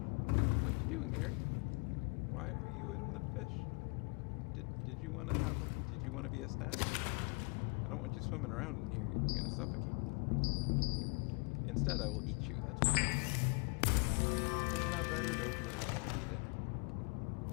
what you doing, Gary? Why are you in the fish? Did you want to be a snack? I don't want you swimming around in here. You're gonna suffocate. Instead, I will eat you. That's better. Isn't that better? Don't you just want to be dinner?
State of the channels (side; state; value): right; quieter; 33.0 dB